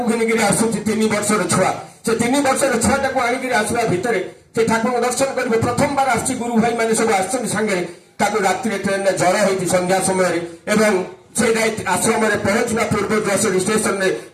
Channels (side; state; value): both; identical; correlation 1.00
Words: ଘିନିକିରି ଆସୁଛି, 3 ବର୍ଷର ଛୁଆ। ସେ 3 ବର୍ଷର ଛୁଆଟାକୁ ଆଣିକିରି ଆସିବା ଭିତରେ ସେ ଠାକୁରଙ୍କୁ ଦର୍ଶନ କରିବେ। ପ୍ରଥମବାର ଆସିଛି, ଗୁରୁ ଭାଇ ମାନେ ସବୁ ଆସିଛନ୍ତି ସାଙ୍ଗରେ। ତାକୁ ରାତିରେ ଟ୍ରେନରେ ଜ୍ୱର ହେଇଛି ସନ୍ଧ୍ୟା ସମୟରେ, ଏବଂ ସେ ଆଶ୍ରମରେ ପହଞ୍ଚିବା ପୂର୍ବରୁ ଷ୍ଟେସନରେ